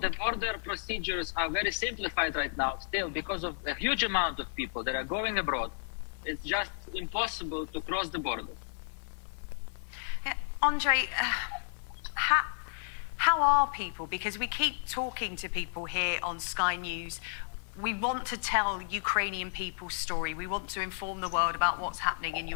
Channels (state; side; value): silent; right; 56 dB below the other